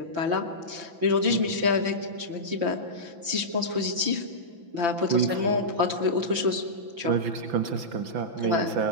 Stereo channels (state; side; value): late; left; 5.9 ms